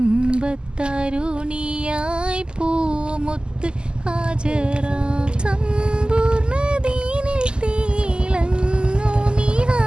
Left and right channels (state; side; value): late; left; 0.048 ms